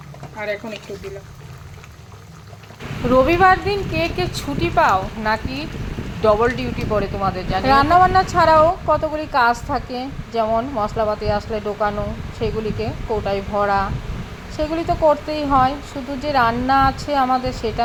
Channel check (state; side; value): identical; both; correlation 1.00